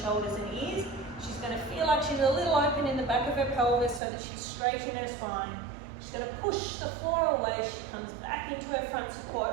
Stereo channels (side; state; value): left; drops out; at 4.0 s